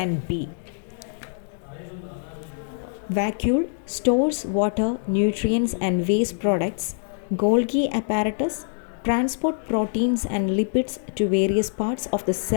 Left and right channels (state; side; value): silent; right; digital silence